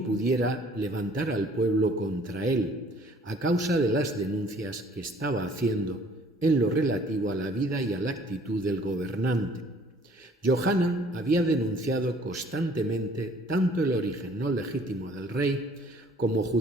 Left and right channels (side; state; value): both; normal; correlation 0.57